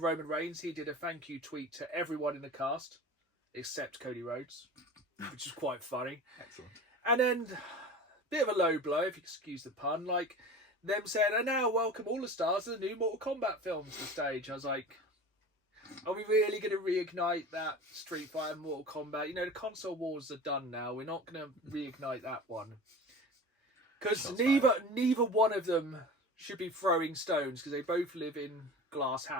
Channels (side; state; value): both; normal; correlation 0.36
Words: Roman Reigns, he did a thank you tweet to everyone in the cast, except Cody Rhodes, which is quite funny. Excellent. And then, bit of a low blow, if you excuse the pun, like them saying, "And now welcome all the stars of the new Mortal Kombat films to the stage." I was like... Are we really going to reignite that Street Fighter Mortal Kombat? The console wars are done now. We're not going to reignite that one. Because neither one of them should be throwing stones because they both live in glass